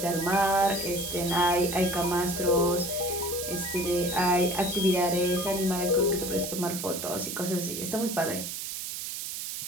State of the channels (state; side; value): noise; right; hiss, 6 dB below the sound